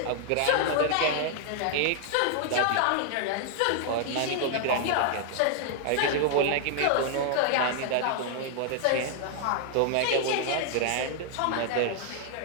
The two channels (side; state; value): both; different; correlation 0.00